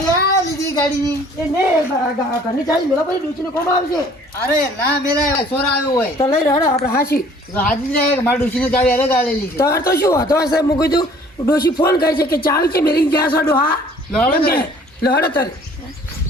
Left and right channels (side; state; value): both; normal; correlation 0.54